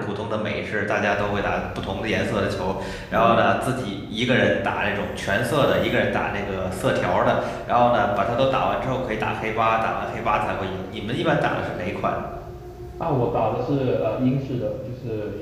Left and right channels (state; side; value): identical; both; correlation 1.00